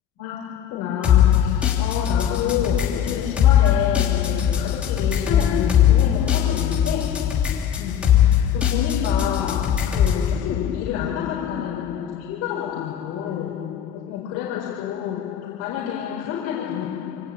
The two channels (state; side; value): quieter; right; 9.5 dB